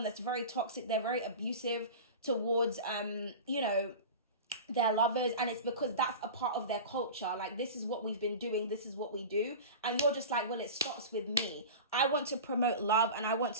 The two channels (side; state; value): both; inverted; correlation -0.31